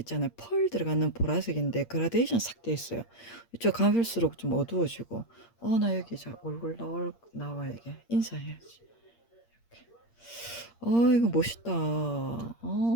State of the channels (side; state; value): right; late; 8.6 ms